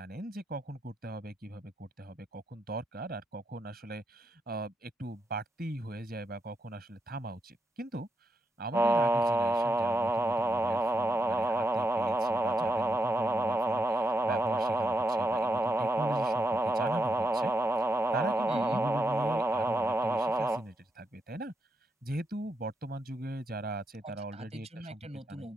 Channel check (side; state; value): both; normal; correlation 0.82